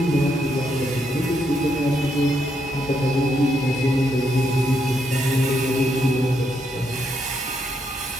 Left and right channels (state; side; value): normal; both; correlation 0.78